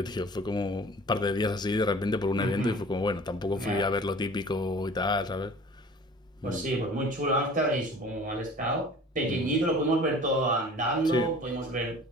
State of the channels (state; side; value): normal; both; correlation 0.45